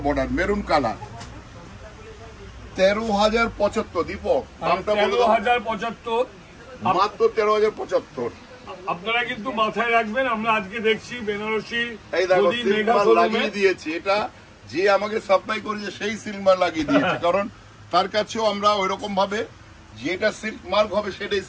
বর্ডার, মেরুন কালার। 13,075 দীপক, দামটা বলে দাও। 13,075, মাত্র 13,075। আপনারা কিন্তু মাথায় রাখবেন, আমরা আজকে দেখছি বেনারসি এই দেখো সিলমার লাগিয়ে দিয়েছি, এটা যে আমাকে সাপ্লাই করেছে সেই সিলমার লাগিয়ে দিয়েছে, কারণ তার কাছেও আমরা ওইরকম ভাবে যেটা সিল্ক মার্ক হবে সেটাই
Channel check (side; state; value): both; identical; correlation 1.00